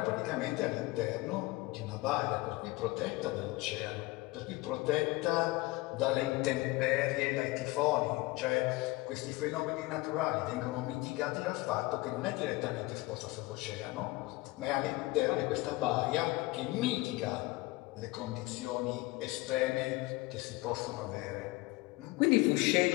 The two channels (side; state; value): right; quieter; 21.1 dB